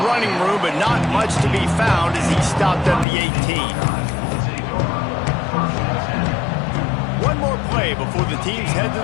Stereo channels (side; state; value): right; drops out; at 3.1 s